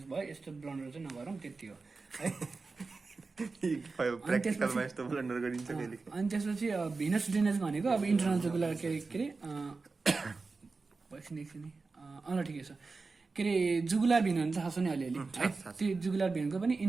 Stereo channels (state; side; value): quieter; left; 4.1 dB